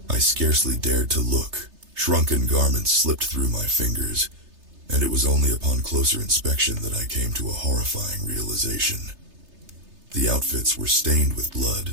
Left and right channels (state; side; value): late; left; 3.3 ms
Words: I scarcely dared to look. Shrunken garments slipped through my fingers, and it was only upon closer inspection that I came to a horrifying realization. The outfits were stained with blood